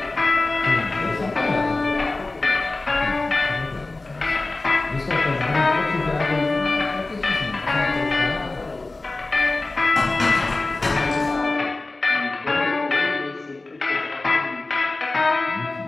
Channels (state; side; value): quieter; right; 3.2 dB